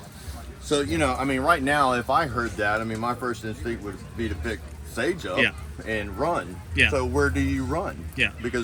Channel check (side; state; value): both; identical; correlation 1.00